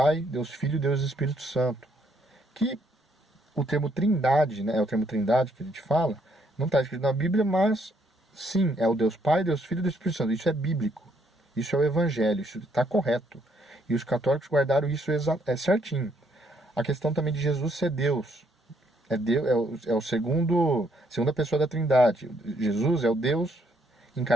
Deus Filho e Deus Espírito Santo. Que o termo trindade, né, é o termo trindade que a gente fala, não está escrito na Bíblia, mas sim, é o Deus Pai, Deus Filho e Deus Espírito Santo. Isso é bíblico. Isso é o Evangelho, isso está correto. E os católicos guardaram isso certinho. A questão também de Jesus ser Deus. É o segunda pessoa da Trindade. Jesus é o Deus em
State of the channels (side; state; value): both; normal; correlation 0.70